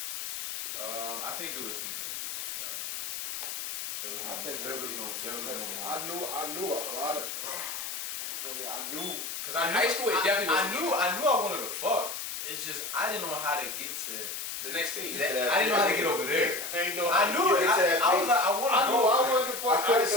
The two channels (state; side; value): noise; left; hiss, 5 dB below the sound